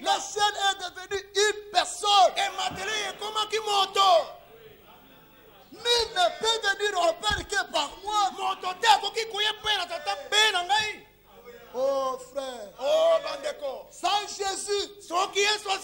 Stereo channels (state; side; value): identical; both; correlation 1.00